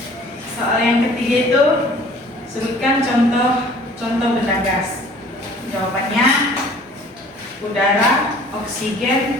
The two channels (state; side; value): normal; both; correlation 0.51